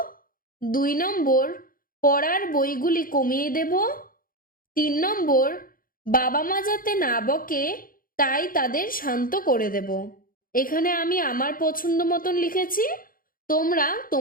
2 নম্বর, পড়ার বইগুলি কমিয়ে দেব। 3 নম্বর, বাবা মা যাতে না বকে তাই তাদের শান্ত করে দেব। এখানে আমি আমার পছন্দ মতন লিখেছি, তোমরা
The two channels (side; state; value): right; late; 0.41 ms